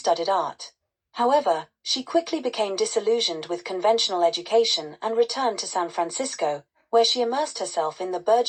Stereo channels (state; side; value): identical; both; correlation 1.00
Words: art. However, she quickly became disillusioned with conventional education and returned to San Francisco, where she immersed herself in the